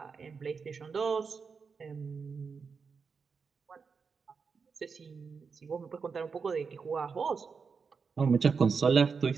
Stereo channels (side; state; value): left; quieter; 5.4 dB